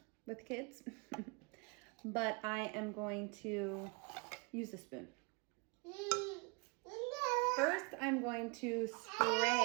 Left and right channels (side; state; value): left; quieter; 31.0 dB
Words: with kids. But I am going to use a spoon. First, I'm going to